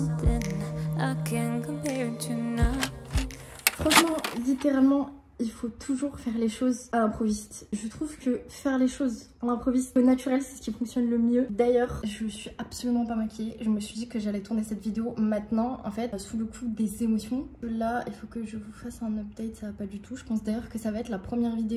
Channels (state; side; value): identical; both; correlation 1.00